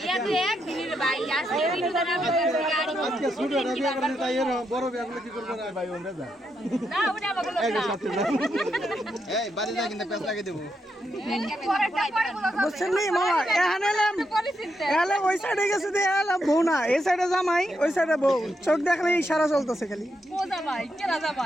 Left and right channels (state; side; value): normal; both; correlation 0.82